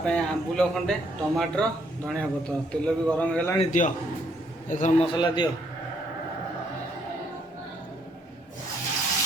ପାଇଁ ଆମ୍ବୁଲ ଖଣ୍ଡେ ଟମାଟର ଧଣିଆ ପତ୍ର ତେଲ ବି ଗରମ ହେଇଗଲାଣି ଦିଅ ଏଥର ମସଲା ଦିଅ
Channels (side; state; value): both; normal; correlation 0.70